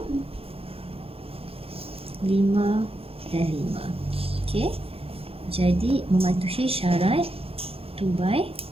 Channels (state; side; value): late; left; 0.28 ms